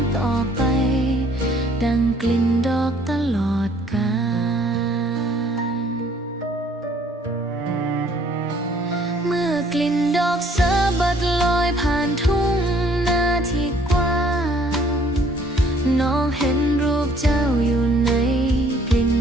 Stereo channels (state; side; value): normal; both; correlation 0.60